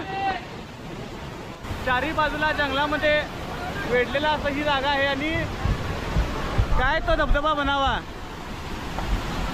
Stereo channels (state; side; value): identical; both; correlation 1.00